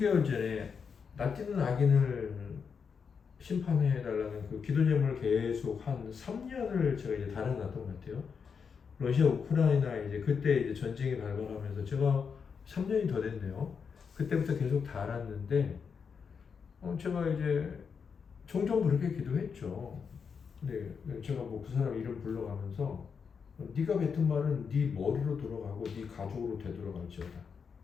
전에 낯뜨는 악인을 심판해달라는 그 기도 제목을 계속 한 3년을 제가 이제 달아놨던 것 같아요. 러시아 우크라이나 이제 그때 이제 전쟁이 발발하면서 제가 3년이 더 됐네요. 그때부터 계속 달았는데 제가 이제 종종 그렇게 기도했죠. 네, 제가 뭐 그 사람 이름 불러가면서 네가 뱉은 말은 네 머리로 돌아가고 네 가족으로 되돌아갈지어다.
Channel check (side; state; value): right; quieter; 6.1 dB